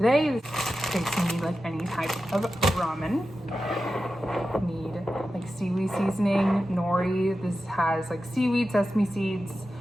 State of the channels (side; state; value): both; normal; correlation 0.92